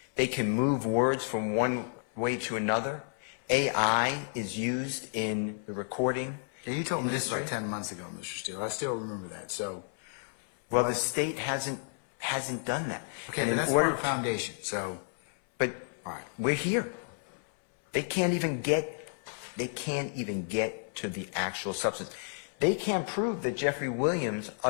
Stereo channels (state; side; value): silent; right; 57 dB below the other